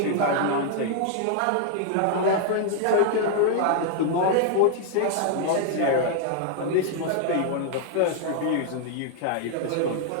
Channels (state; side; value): different; both; correlation 0.00